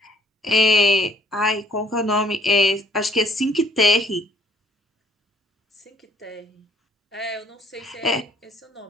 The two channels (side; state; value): both; normal; correlation 0.60